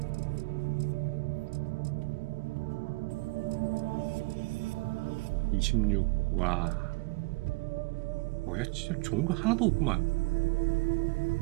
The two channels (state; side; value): quieter; left; 24.1 dB